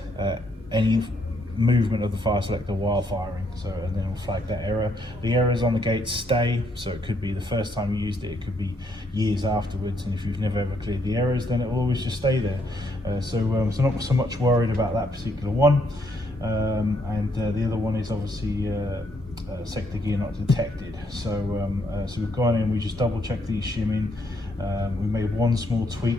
any movement of the fire selector while firing, and then it'll flag that error. The errors on the gate stay, so it could be the first time you used it, it could be years afterwards, and if you've never ever cleared the errors, then it will always just stay there. So not so much worried about that particular one. The other one is obviously sector gear not detected. So we've gone in, we just double checked these shimming. We made one small tweak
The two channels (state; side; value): normal; both; correlation 0.73